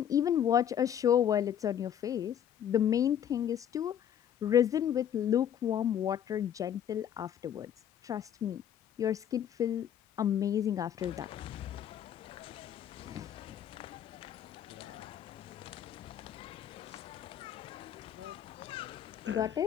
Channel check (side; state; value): right; quieter; 9.6 dB